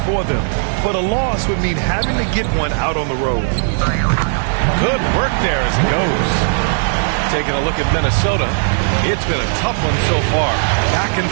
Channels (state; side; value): silent; left; 68 dB below the other